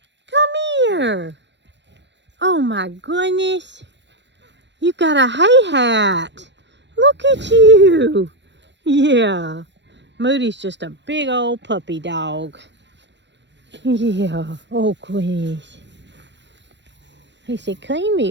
Come here. Oh my goodness. You got a hay hat. Look at you. Yeah. Moody's just a big old puppy dog. Yeah. Oh, goodness. He said, clean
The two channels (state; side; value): late; left; 0.52 ms